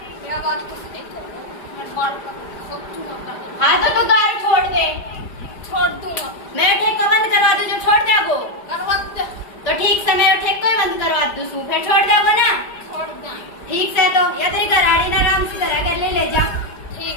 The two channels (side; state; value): right; late; 5.0 ms